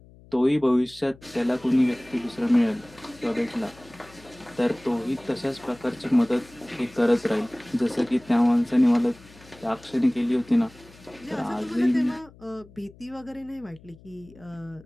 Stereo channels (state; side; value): noise; left; hum, 24 dB below the sound